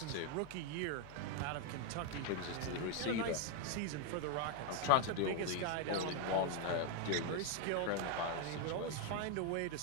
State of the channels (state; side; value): different; both; correlation 0.01